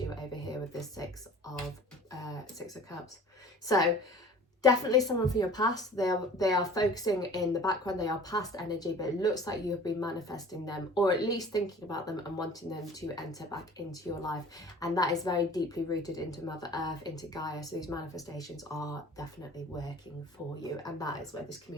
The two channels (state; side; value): normal; both; correlation 0.45